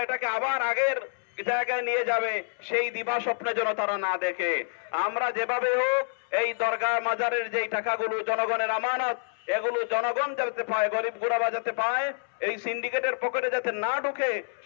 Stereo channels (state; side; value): silent; right; 60 dB below the other